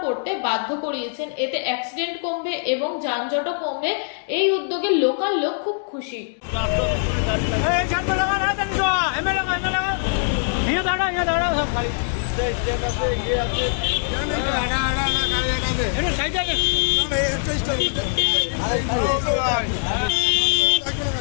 করতে বাধ্য করিয়েছেন। এতে অ্যাক্সিডেন্ট কমবে এবং যানজটও কমবে। এই উদ্যোগে লোকাল লোক খুব খুশি।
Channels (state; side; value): silent; right; digital silence